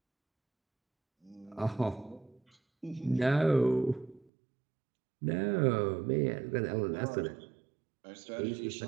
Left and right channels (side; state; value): left; drops out; at 4.2 s